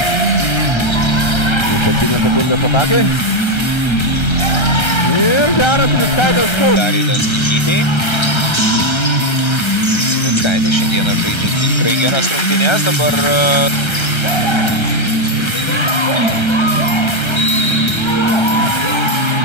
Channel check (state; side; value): late; right; 1.3 ms